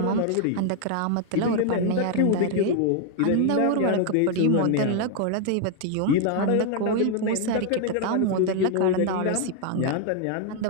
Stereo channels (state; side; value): different; both; correlation 0.00